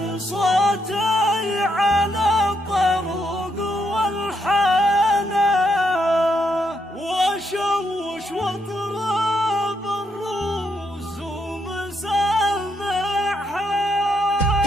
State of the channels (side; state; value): both; normal; correlation 0.77